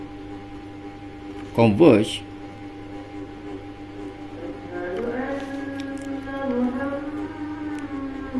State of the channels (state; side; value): identical; both; correlation 1.00